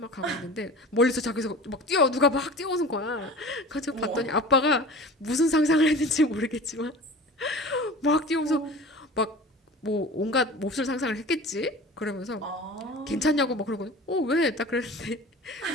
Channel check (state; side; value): normal; both; correlation 0.39